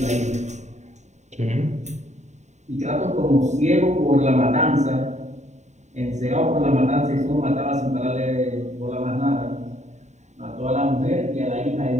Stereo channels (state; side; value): late; left; 0.34 ms